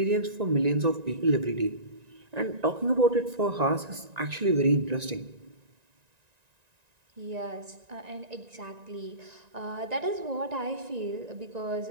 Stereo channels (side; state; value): left; late; 1.9 ms